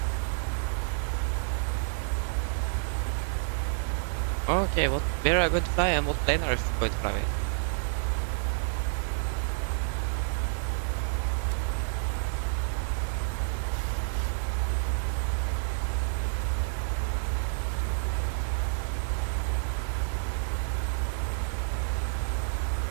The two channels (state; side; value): silent; left; digital silence